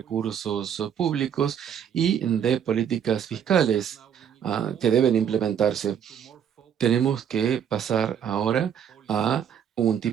públicos y de políticas fiscales que deben implementarse. Tenemos que pasar ahora a un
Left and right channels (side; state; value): left; quieter; 8.6 dB